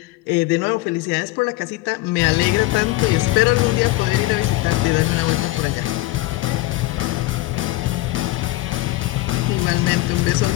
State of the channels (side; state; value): right; quieter; 18.5 dB